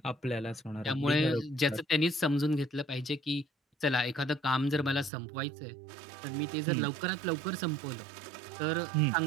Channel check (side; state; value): left; drops out; at 5.1 s